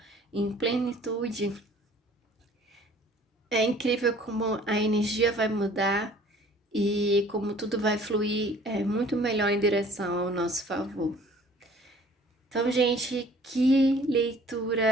em plenitude, é incrível como a energia vai mudar e como tudo vai fluir muito melhor em direção ao nosso favor. Então, gente, que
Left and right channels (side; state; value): both; normal; correlation 0.53